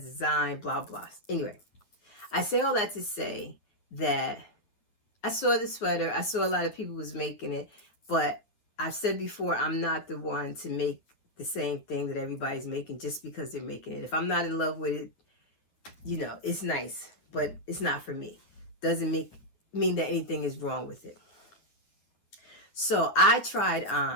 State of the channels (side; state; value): right; late; 9.8 ms